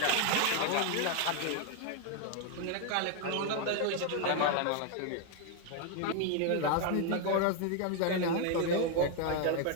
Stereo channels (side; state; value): both; different; correlation 0.01